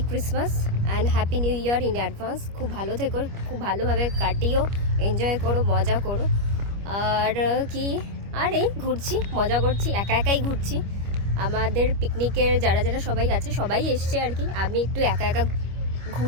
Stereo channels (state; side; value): late; left; 25 ms